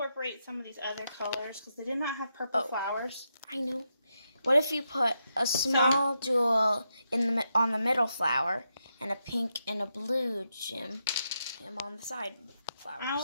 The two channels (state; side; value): inverted; both; correlation -0.84